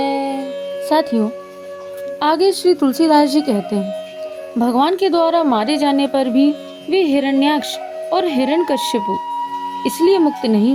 साथियों, आगे श्री तुलसीदास जी कहते हैं, भगवान के द्वारा मारे जाने पर भी वे हिरण्याक्ष और हिरण्यकश्यप इसलिए मुक्त नहीं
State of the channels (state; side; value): identical; both; correlation 1.00